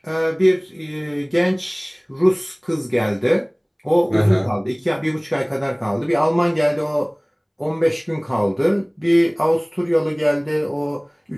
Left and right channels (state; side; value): identical; both; correlation 1.00